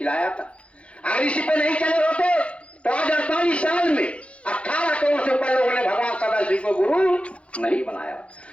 था। अगर इसी पे नहीं चले होते तो आज 48 साल में 18 करोड़ से ऊपर लोगों ने भगवान सदाशिव को गुरु नहीं बनाया।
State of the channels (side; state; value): right; late; 0.061 ms